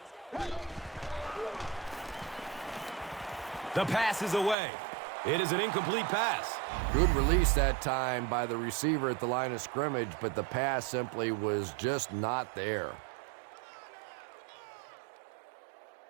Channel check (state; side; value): drops out; left; at 4.5 s